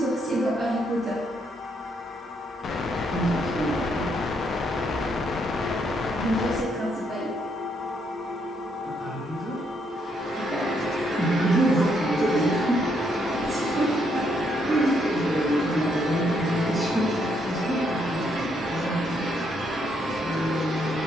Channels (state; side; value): normal; both; correlation 0.74